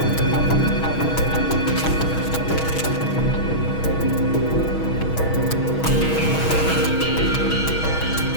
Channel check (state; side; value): late; right; 6.3 ms